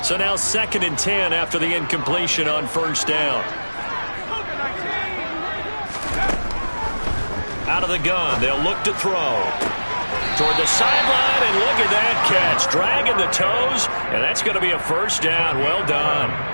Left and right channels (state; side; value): inverted; both; correlation -1.00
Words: So now 2nd and 10 after the incompletion on 1st down. Out of the gun, they'll look to throw. Toward the sideline, and look at that catch. Dragging the toes, and that's going to be a 1st down. Well done.